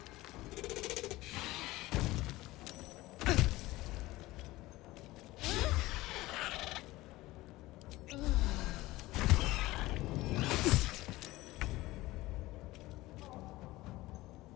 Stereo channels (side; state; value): right; quieter; 18.6 dB